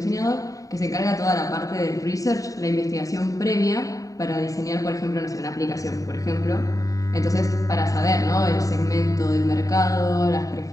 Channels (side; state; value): right; late; 0.16 ms